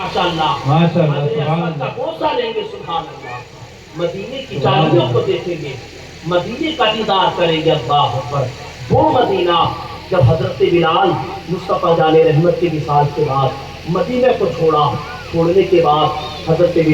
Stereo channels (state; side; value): identical; both; correlation 1.00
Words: بوسہ لیں گے، سبحان اللہ، مدینے کی چادروں کو دیکھیں گے، مدینے کا دیدار کریں گے، اللہ اکبر۔ وہ مدینہ جب حضرت بلال مصطفیٰ جان رحمت کے وصال کے بعد مدینہ کو چھوڑنے کے بعد حضرت